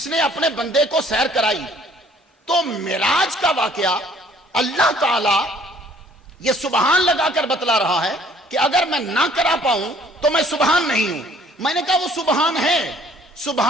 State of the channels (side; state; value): both; normal; correlation 0.58